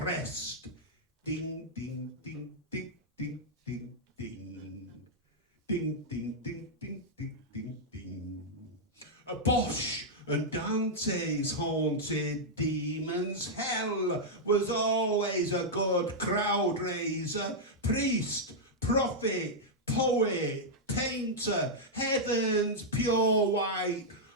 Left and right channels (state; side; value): normal; both; correlation -0.05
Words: Ding, ding, ding, ding, ding, ding, ding. Ding, ding, ding, ding, ding, ding, ding. A Bosch and Dante's haunted demons. Hell was always a good crowd raiser. Priest, prophet, poet, painter, heaven's pure white